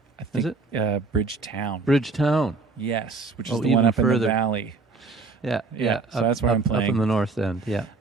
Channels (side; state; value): left; quieter; 3.9 dB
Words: I think, is it? Bridgetown. Bridgetown. Yes, which is the one up further. in the valley. Yeah. So that's where I'm playing. Up in the north end, yeah.